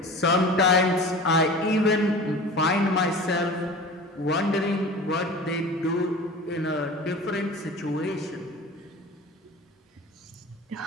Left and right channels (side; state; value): both; normal; correlation 0.37